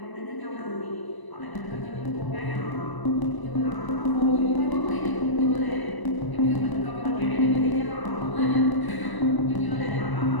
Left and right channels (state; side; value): late; right; 1.0 ms